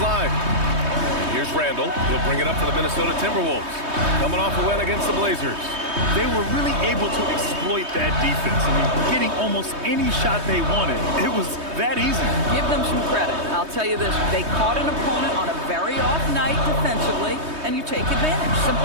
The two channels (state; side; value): late; left; 3.2 ms